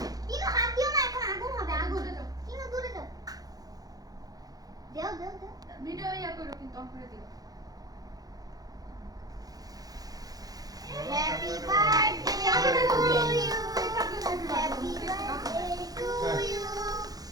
কিনো হাত দিও না এখন আগুন হবে আগুন দূরে যাও। কিনো দূরে যাও দেও দেও দেও ভিডিও ইয়া করো কিন্তু অন করে দিও happy birthday to you happy birthday to you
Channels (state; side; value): late; left; 0.18 ms